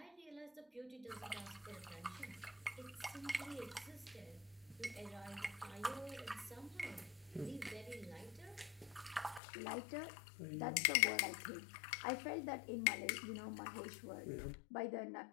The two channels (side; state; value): right; drops out; at 9.4 s